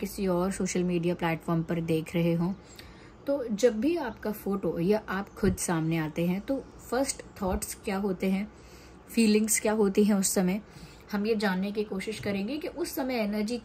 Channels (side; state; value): both; identical; correlation 1.00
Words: और सोशल मीडिया प्लेटफॉर्म पर देख रहे हों, तो जब भी आपका फोटो या आप खुद सामने आते हैं तो फर्स्ट थॉट्स क्या होते हैं, फीलिंग्स क्या होती हैं उस समय, हम ये जानने की कोशिश करेंगे कि उस समय एनर्जी